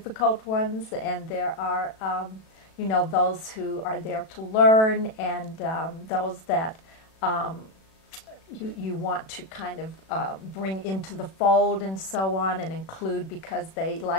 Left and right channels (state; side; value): late; right; 37 ms